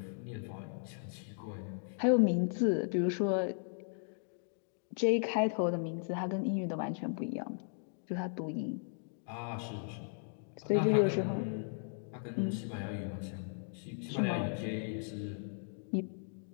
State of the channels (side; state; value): right; silent; digital silence